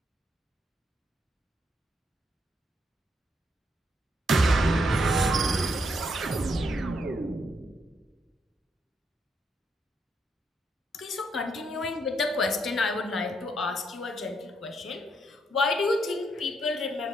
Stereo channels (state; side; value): normal; both; correlation 0.77